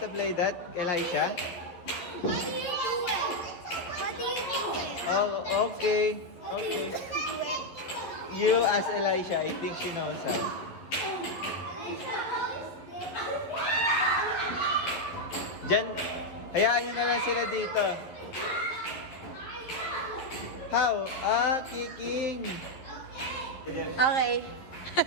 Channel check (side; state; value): right; late; 11 ms